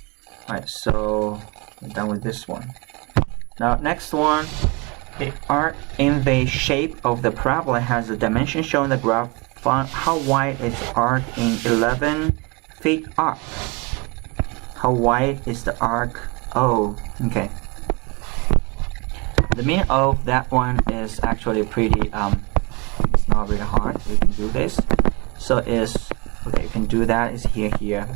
Alright, so we're done with this one. Now next one, the arc in the shape of the parabola has a dimension shown in the graph. Find how wide is the arc in 11 feet arc. How wide is the arc? Oh, okay. The meaning of that one is actually pretty, it's not really hard. You can do this. So is, okay, you can do that, is here.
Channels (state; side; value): quieter; left; 28.1 dB